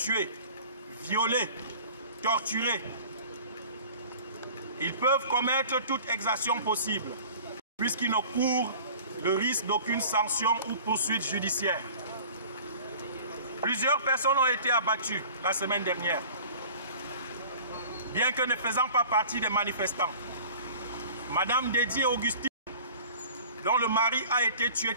violé, torturé. Ils peuvent commettre toute exaction possible, puisqu'ils ne courent le risque d'aucune sanction ou poursuite judiciaire. Plusieurs personnes ont été abattues la semaine dernière, bien que ne faisant pas partie des manifestants. Madame Dédié Augustine, dont le mari a été tué,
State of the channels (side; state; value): both; inverted; correlation -0.44